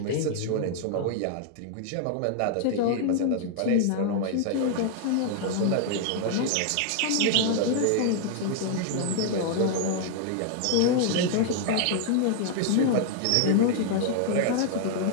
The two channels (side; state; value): both; different; correlation 0.00